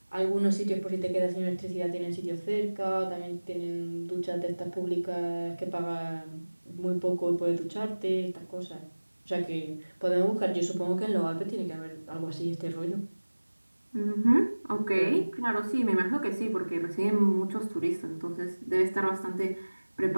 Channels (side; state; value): both; inverted; correlation -1.00